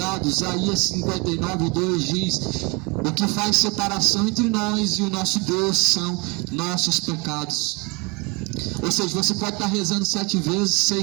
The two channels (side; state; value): left; quieter; 28.8 dB